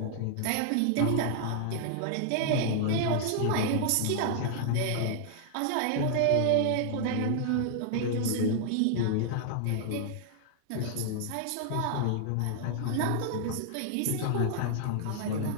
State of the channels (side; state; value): both; different; correlation -0.01